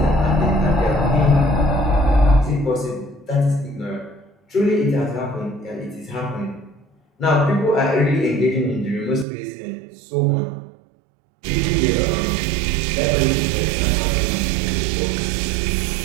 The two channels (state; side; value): drops out; left; at 9.2 s